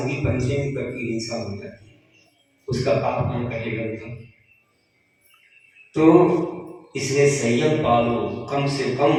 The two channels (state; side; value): identical; both; correlation 1.00